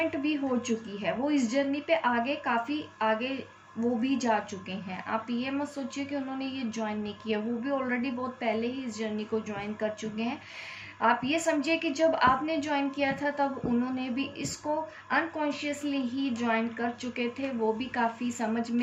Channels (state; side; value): identical; both; correlation 1.00